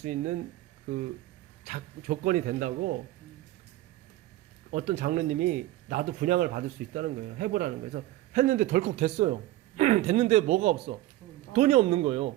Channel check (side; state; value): left; quieter; 15.9 dB